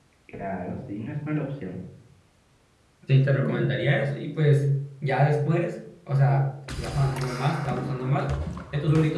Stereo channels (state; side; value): identical; both; correlation 1.00